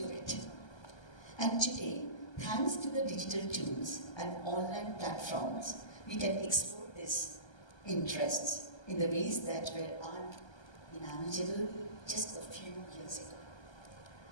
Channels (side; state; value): right; late; 1.3 ms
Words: it. And today, thanks to the digital tools and online platforms, we can explore these interests in the ways that were unimaginable just a few years ago.